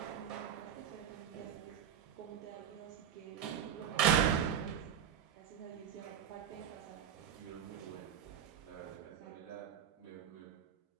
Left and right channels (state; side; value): quieter; left; 8.8 dB